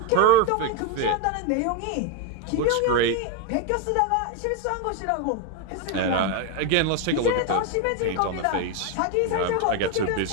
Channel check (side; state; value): both; different; correlation 0.02